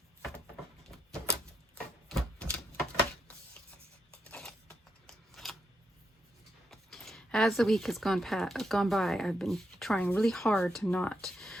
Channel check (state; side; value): normal; both; correlation 0.81